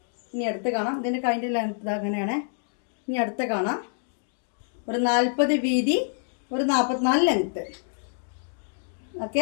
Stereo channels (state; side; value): silent; right; digital silence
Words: ഇനി അടുത്ത് കാണാം. ഇതിൻ്റെ കൈൻ്റെ ലെങ്ത് അങ്ങനെയാണ്. ഇനി അടുത്ത് കാണാം, ഒരു 40 വീതി, ഒരു 44 ലെങ്ത്ത്.